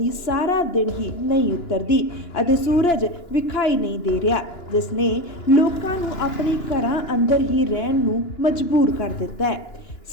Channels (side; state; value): right; late; 2.9 ms